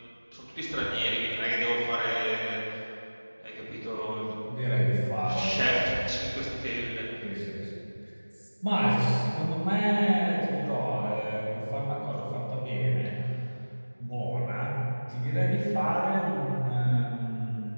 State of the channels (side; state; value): both; inverted; correlation -1.00